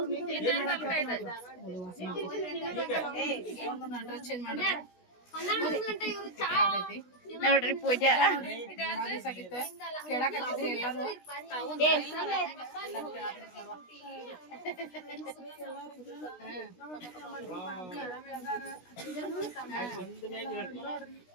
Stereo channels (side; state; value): right; late; 16 ms